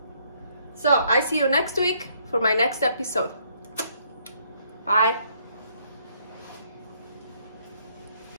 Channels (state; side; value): inverted; both; correlation -0.68